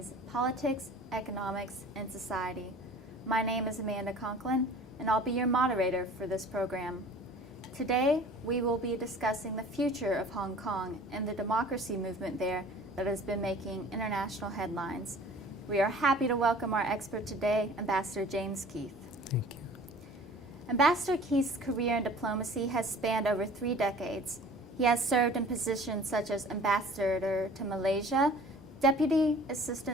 politics, economics, and society. My name is Amanda Conklin, and I'll be your moderator for this program. Today, we will be discussing the future of Hong Kong and the democracy movement there that has been making international headlines. We are happy to welcome our expert today, Ambassador James Keith. Thank you. Ambassador Keith's career in diplomacy has spanned over 3 decades. He has served in positions such as Ambassador to Malaysia, Deputy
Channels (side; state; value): both; normal; correlation 0.46